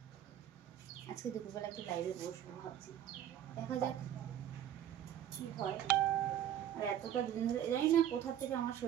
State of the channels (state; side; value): quieter; left; 10.7 dB